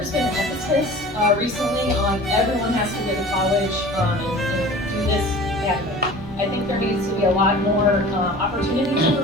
been an emphasis recently on everyone has to go to college and do this academic. I think there needs to be a lot more opportunities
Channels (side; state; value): both; normal; correlation 0.41